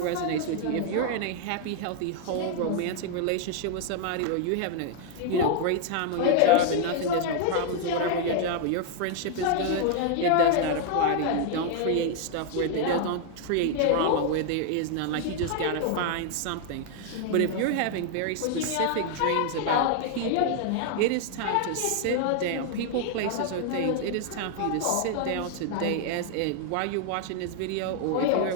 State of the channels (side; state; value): both; different; correlation 0.00